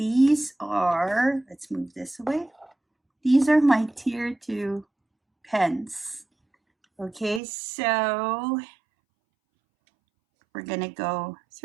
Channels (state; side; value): drops out; left; at 7.4 s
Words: are, let's move this away. These are my tier 2 pens. Okay, so we're gonna go